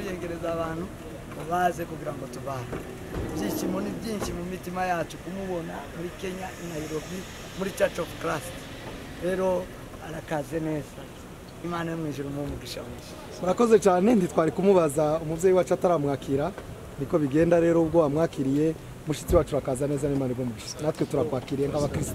abantu baze kugira ngo tubane. Ibyishimo ni byinshi mu mitima yacu kumubona muri Kenya, i Nairobi, muri Church of Christ. Rero arakaze neza, Imana yo mu ijuru umugisha mwinshi. Murakoze cyane, ntitwari kumubaza umuvyeyi wacu ataramwakira, niko bigenda. Rero ubwo wamwakiriye mushitsi wacu rakaza neza, n'Imana igumugisha. Natwe turakwakiriye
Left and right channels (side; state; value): both; identical; correlation 1.00